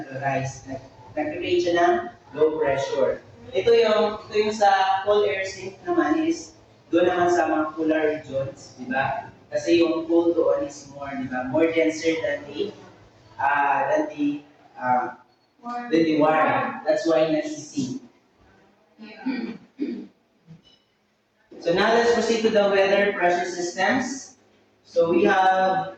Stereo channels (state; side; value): identical; both; correlation 1.00